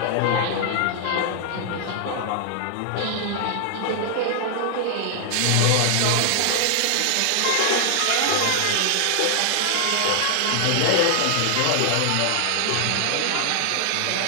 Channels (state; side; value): different; both; correlation 0.00